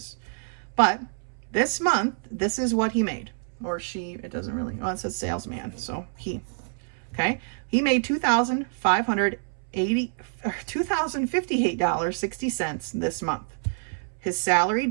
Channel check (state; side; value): silent; left; 60 dB below the other